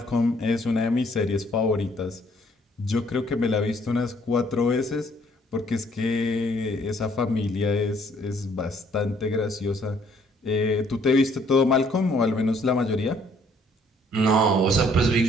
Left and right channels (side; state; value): both; normal; correlation 0.63